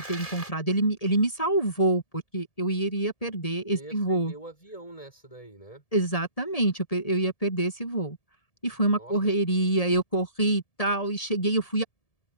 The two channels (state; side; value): late; right; 1.7 ms